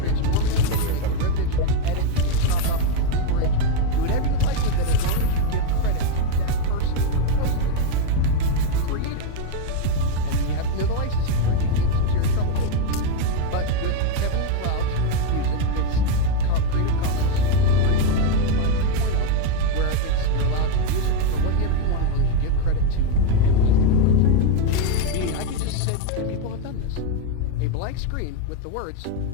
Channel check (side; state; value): both; different; correlation 0.02